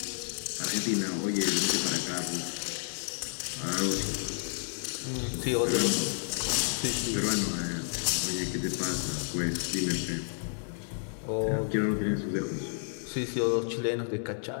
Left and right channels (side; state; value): right; silent; 57 dB below the other